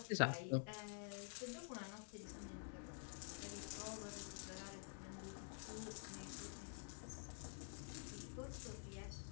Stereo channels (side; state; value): right; silent; digital silence